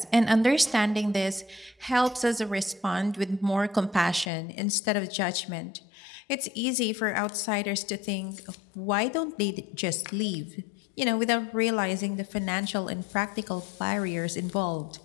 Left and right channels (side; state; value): right; drops out; at 4.3 s